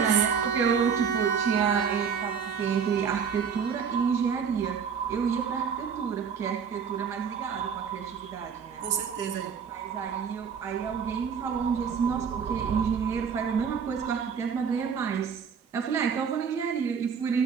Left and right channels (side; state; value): left; quieter; 6.7 dB